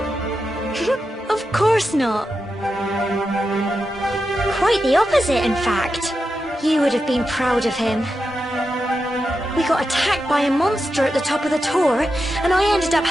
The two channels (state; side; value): normal; both; correlation 0.89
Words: Of course not. Quite the opposite, in fact. You would have been proud of him. We got attacked by a monster at the top of the tor, and I ended up